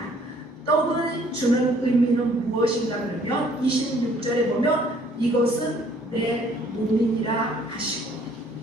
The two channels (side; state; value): both; normal; correlation 0.60